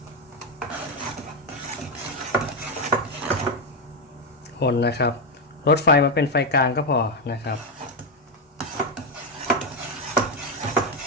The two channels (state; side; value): normal; both; correlation 0.05